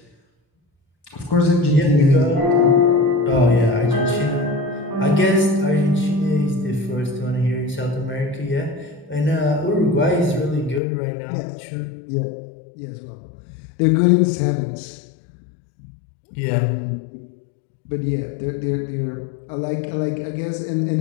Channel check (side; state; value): right; drops out; at 10.8 s